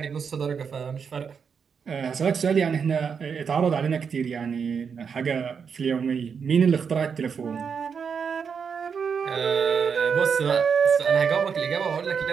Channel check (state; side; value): quieter; left; 6.4 dB